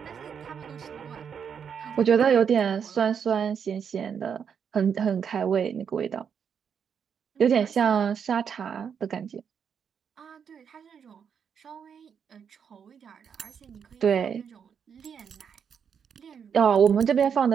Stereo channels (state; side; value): quieter; left; 7.3 dB